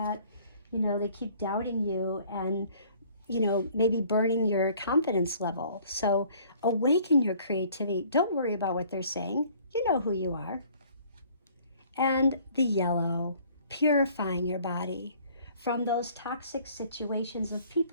They keep doubting you and, maybe burning your confidence level. So awaken your creativity. Don't worry about what they're saying. You know who you are. And the yellow, purifying your body from those toxic situations of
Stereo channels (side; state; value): both; inverted; correlation -0.56